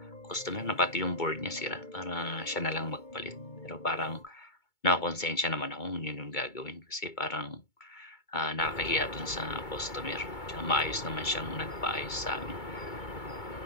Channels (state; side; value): late; right; 2.2 ms